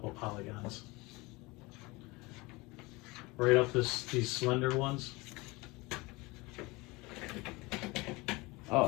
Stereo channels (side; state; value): right; quieter; 23.9 dB